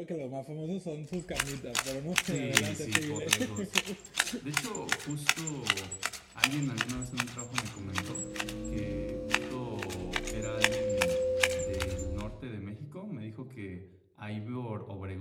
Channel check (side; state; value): both; identical; correlation 1.00